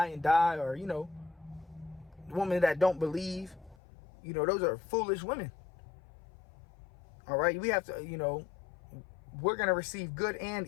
and die, or, you know, women that don't believe, you know, those are foolish women. All right, we have to, you know, we're going to receive good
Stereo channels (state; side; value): drops out; right; at 3.8 s